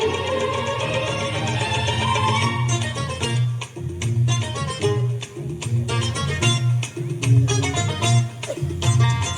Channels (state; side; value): identical; both; correlation 1.00